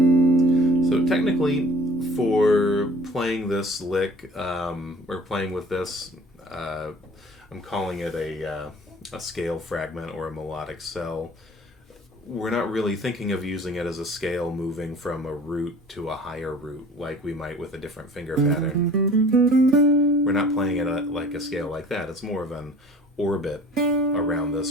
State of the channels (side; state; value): both; normal; correlation 0.48